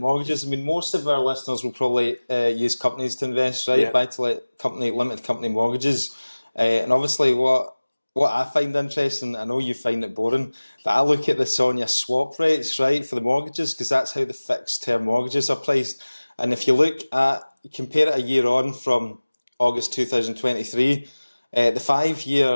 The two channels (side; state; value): both; inverted; correlation -1.00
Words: most of our listeners will probably use companies to invest, right? Yeah. Buy-to-let company, limited company mortgages. And obviously what I find interesting, I know you find it boring, but I look at the SONIA swap rates, right, for the mortgages, because that's how the fixed term mortgages are priced. And if you compare it a year on from August 2023, the